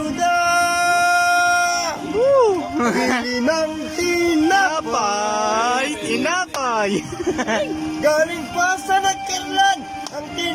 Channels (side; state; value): both; identical; correlation 1.00